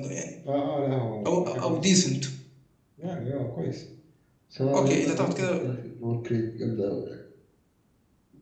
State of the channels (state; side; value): identical; both; correlation 1.00